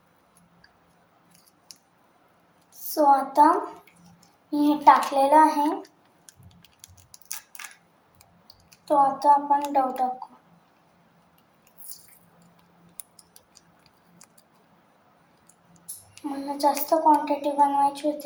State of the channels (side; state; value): both; identical; correlation 1.00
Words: आता मी हे टाकलेलं आहे. आता आपण डव टाकू. मला जास्त क्वांटिटी बनवायची